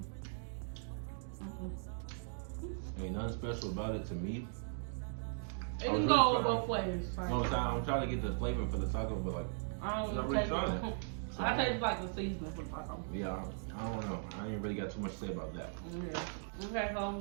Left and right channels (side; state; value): left; silent; digital silence